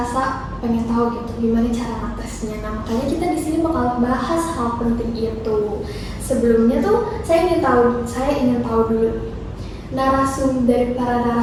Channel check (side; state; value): both; identical; correlation 1.00